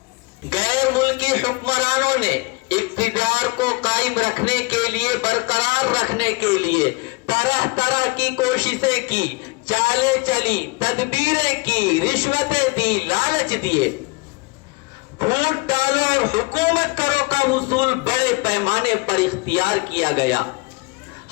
غیر ملکی حکمرانوں نے اقتدار کو قائم رکھنے کے لیے، برقرار رکھنے کے لیے طرح طرح کی کوششیں کی، چالیں چلی، تدبیریں کی، رشوتیں دی، لالچ دیے. پھوٹ ڈالو اور حکومت کرو کا اصول بڑے پیمانے پر اختیار کیا گیا.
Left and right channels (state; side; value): quieter; right; 26.4 dB